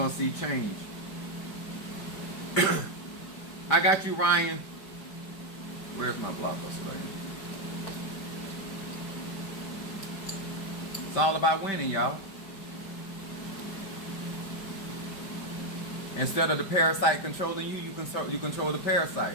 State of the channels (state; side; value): late; right; 5.1 ms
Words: to see change. I got you, Ryan. Where's my Blockbuster right here? It's all about winning, y'all. Instead of the parasite controlling you, you control the